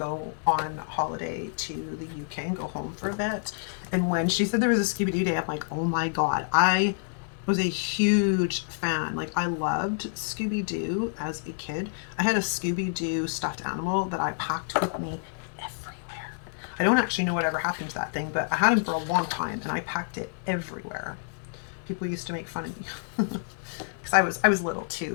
on holiday to the UK and go home for a bit. And when she said there was a Scooby-Doo day, I'm like, oh my God, I was a huge fan. Like, I loved Scooby-Doo as a kid. I had a Scooby-Doo stuffed animal that I packed with me everywhere. I don't actually know whatever happened to that thing, but I had him for a long time and I packed it everywhere. People used to make fun of me because I was little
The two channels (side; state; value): right; silent; digital silence